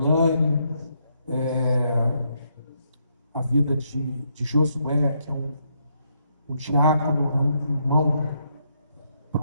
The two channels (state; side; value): inverted; both; correlation -0.76